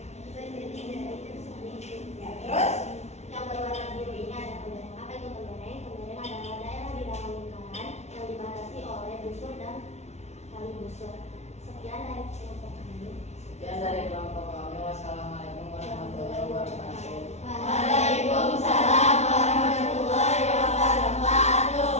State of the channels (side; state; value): right; late; 0.32 ms